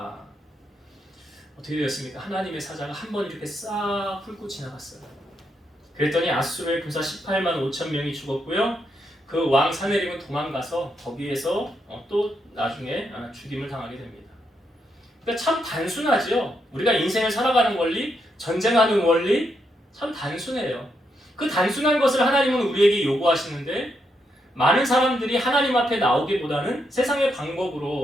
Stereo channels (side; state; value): both; normal; correlation 0.80